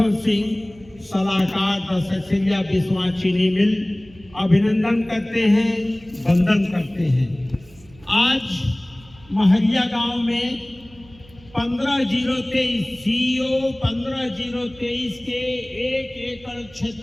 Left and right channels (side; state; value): right; noise; hum, 25 dB below the sound